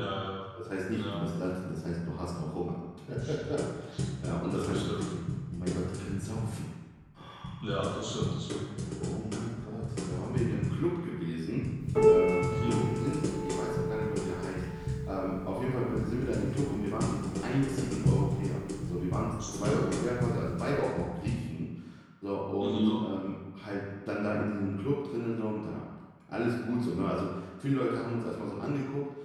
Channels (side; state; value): both; identical; correlation 1.00